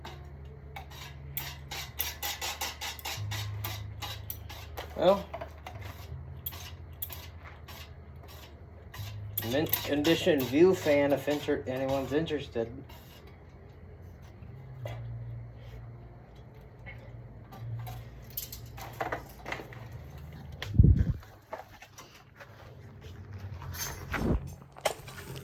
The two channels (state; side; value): identical; both; correlation 1.00